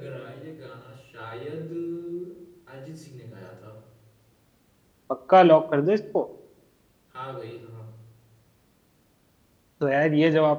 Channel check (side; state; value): both; identical; correlation 1.00